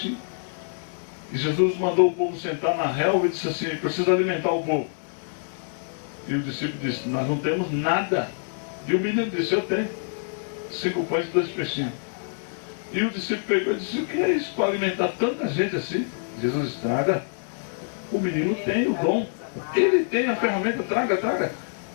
E Jesus mandou o povo sentar na relva e disse assim: precisa alimentar o povo. E o discípulo disse: nós não temos nada. E o menino disse: eu tenho 5 pães e 2 peixinhos. E o discípulo pegou e disse: o que é isso para alimentar tanta gente assim? Jesus: traga. O menino tem o dom, ele tem a ferramenta, traga.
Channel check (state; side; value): silent; right; digital silence